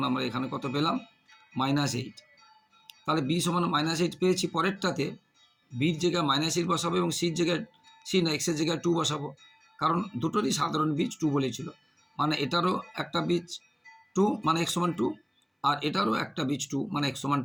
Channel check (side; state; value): both; identical; correlation 1.00